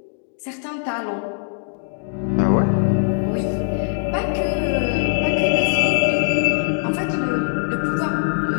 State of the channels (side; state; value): right; silent; 60 dB below the other